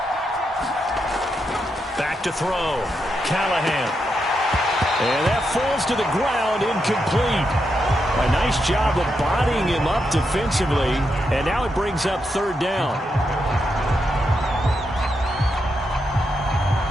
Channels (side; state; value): both; normal; correlation 0.83